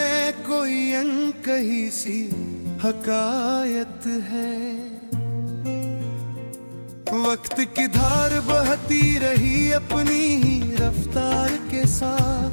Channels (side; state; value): both; inverted; correlation -1.00